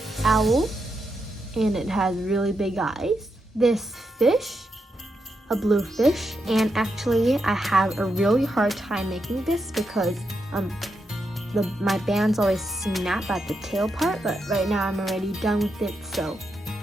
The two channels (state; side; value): normal; both; correlation 0.84